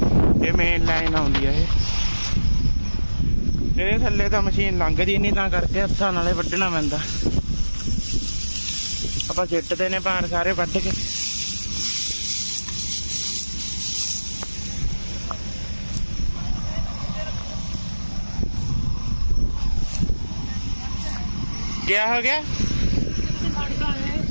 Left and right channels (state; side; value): inverted; both; correlation -1.00